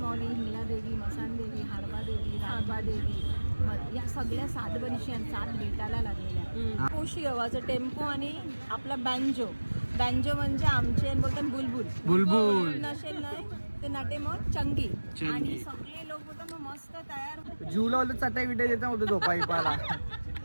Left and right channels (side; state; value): both; inverted; correlation -1.00